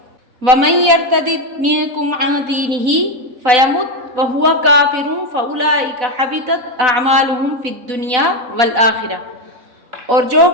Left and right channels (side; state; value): left; late; 4.1 ms